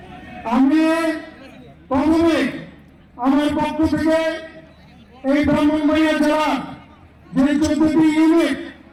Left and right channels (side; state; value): both; identical; correlation 1.00